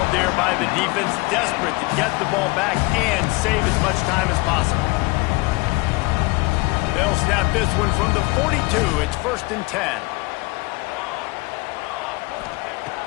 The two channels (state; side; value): quieter; right; 24.6 dB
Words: there by the defense, desperate to get the ball back and save as much time as possible. They'll snap this one from the 42. It's 1st and 10.